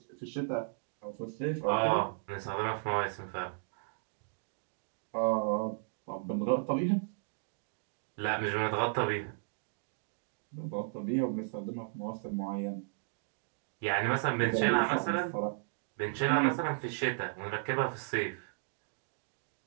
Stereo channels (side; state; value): left; silent; digital silence